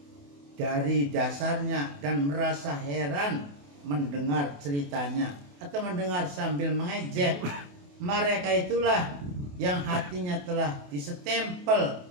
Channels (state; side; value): late; left; 28 ms